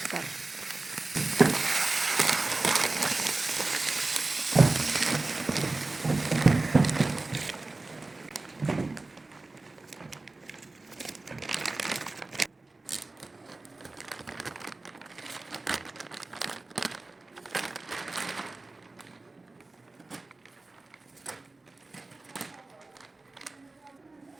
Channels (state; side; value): quieter; left; 3.2 dB